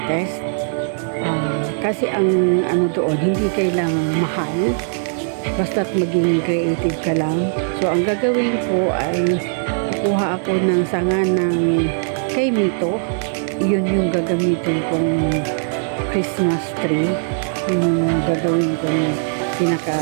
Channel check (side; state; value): left; silent; digital silence